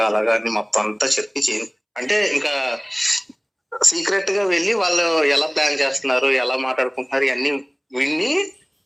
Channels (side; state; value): both; identical; correlation 1.00